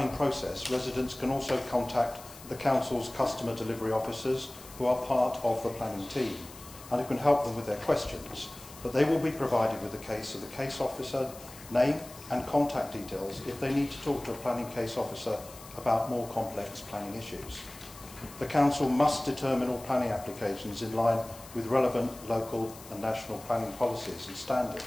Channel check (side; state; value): left; noise; hiss, 18 dB below the sound